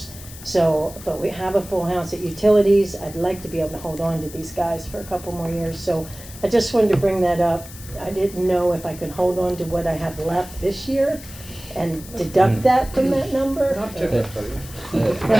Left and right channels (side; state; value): left; noise; hiss, 16 dB below the sound